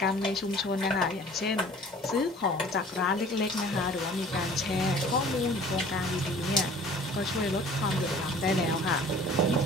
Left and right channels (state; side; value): normal; both; correlation 0.49